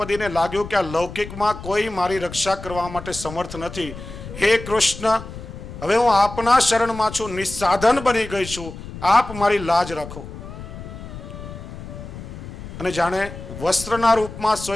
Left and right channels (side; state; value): left; noise; rumble, 12 dB below the sound